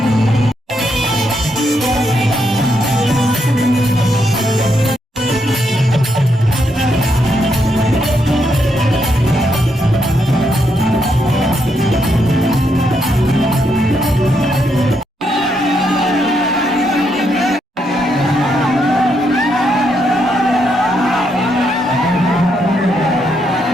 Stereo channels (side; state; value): both; normal; correlation 0.78